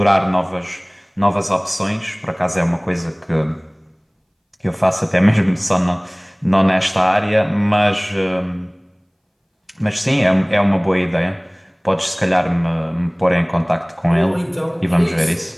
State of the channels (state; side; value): identical; both; correlation 1.00